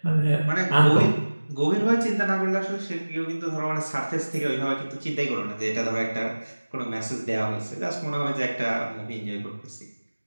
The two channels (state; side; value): inverted; both; correlation -1.00